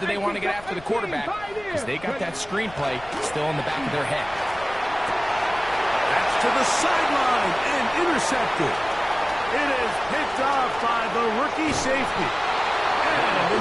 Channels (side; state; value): left; noise; rumble, 20 dB below the sound